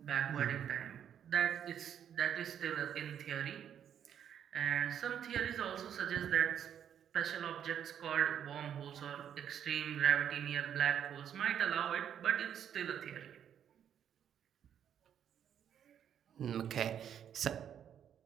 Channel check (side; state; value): left; quieter; 9.2 dB